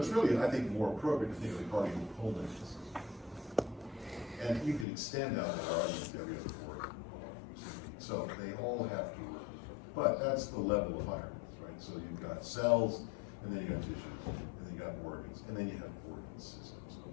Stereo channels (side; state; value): right; drops out; at 4.9 s